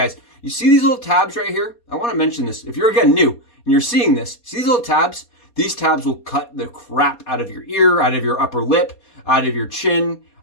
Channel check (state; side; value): late; right; 4.2 ms